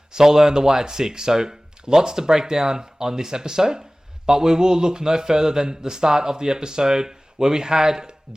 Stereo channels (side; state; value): both; normal; correlation 0.98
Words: Solo and the Wyatt Six. So lots to break down on this episode, but we will look no further than the start of the episode where we had